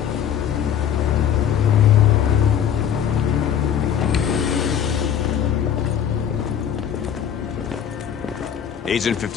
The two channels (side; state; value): right; quieter; 9.0 dB